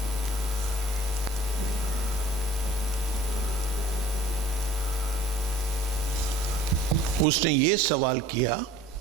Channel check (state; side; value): normal; both; correlation 0.50